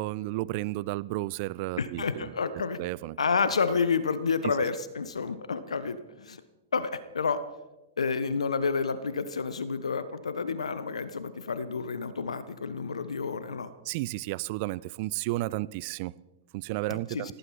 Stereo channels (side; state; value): both; inverted; correlation -0.56